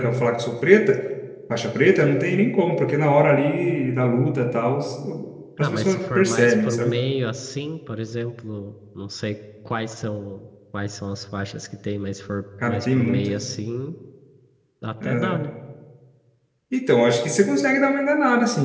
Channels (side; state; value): both; identical; correlation 1.00